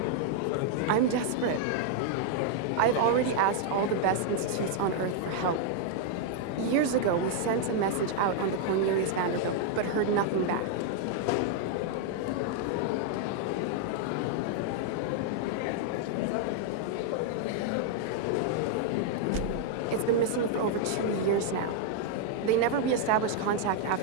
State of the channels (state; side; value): different; both; correlation 0.00